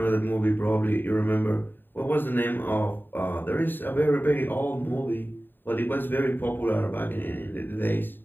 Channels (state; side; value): late; right; 0.094 ms